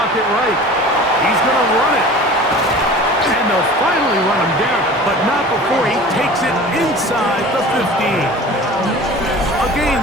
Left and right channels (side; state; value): both; normal; correlation 0.40